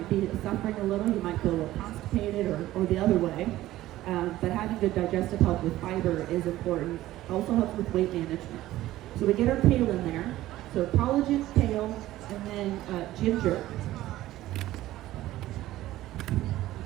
be suffering a little. You might feel a little constipated or the other way. But having good digestive health with fiber is important. It also helps with weight management. So we get our kale in there. So collagen, kale, and then ginger.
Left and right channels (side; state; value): left; quieter; 15.3 dB